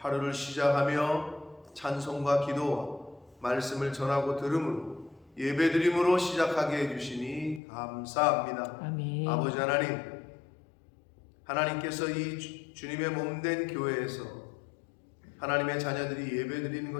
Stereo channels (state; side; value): drops out; right; at 7.6 s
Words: 시작하며 찬송과 기도와 말씀을 전하고 들음으로 예배드림으로 시작하게 해주시니 감사합니다. 아멘. 아버지 하나님께서 이 주님의 몸된 교회에서 하나님의 자녀들이 예배드리는